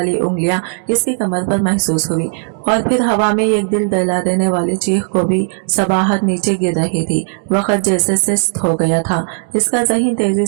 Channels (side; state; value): left; silent; digital silence